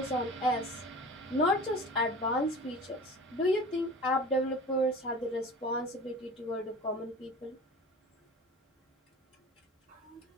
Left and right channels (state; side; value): normal; both; correlation 0.38